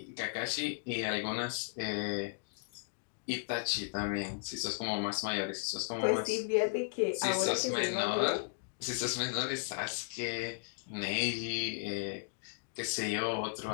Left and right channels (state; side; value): silent; right; digital silence